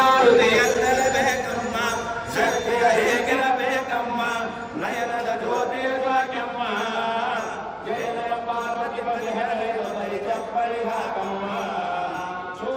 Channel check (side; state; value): both; identical; correlation 1.00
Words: ಶಕ್ತಿಯ ಹೇಗಿರಬೇಕಮ್ಮ ನಯನದ ಜ್ಯೋತಿಯ ಶಾಕ್ಯಮ್ಮ ಜಯ ಜಯ ಪಾರ್ವತಿ ಪತಿ ಹರಯನು ತಲಿ ಚಪ್ಪಳಿಘಾಕಮ್ಮ